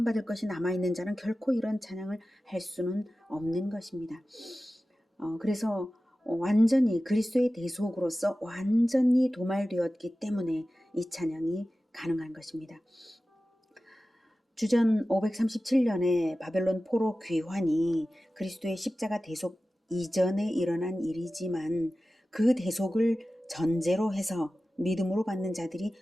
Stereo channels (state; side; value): normal; both; correlation 0.95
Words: 것이 남아있는 자는 결코 이런 찬양을 할 수는 없는 것입니다. 그래서 완전히 그리스도의 대속으로서 완전히 도말되었기 때문에 이 찬양이 가능한 것입니다. 주전 537년에 바벨론 포로 귀환이 그리스도의 십자가 대속 이전에 일어난 일이지만 그 대속을 전제로 해서 믿음으로 받는 자들이